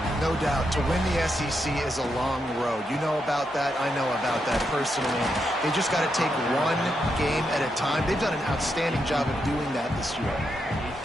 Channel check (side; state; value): both; normal; correlation 0.82